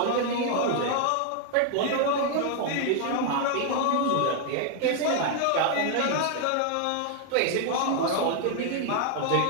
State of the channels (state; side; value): different; both; correlation 0.00